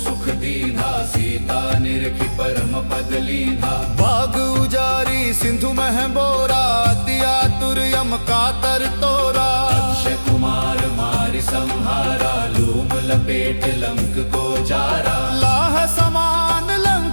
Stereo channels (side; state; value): both; inverted; correlation -1.00